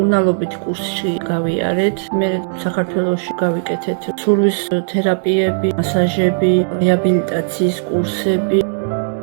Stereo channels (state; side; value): silent; left; digital silence